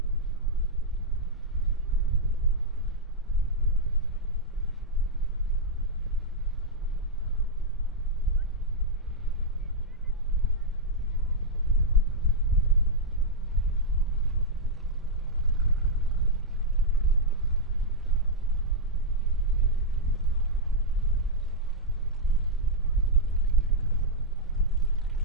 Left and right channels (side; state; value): both; normal; correlation -0.05